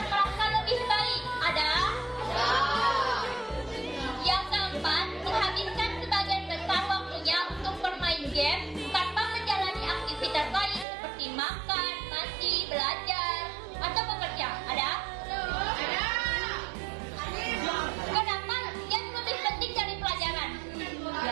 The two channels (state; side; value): drops out; left; at 10.9 s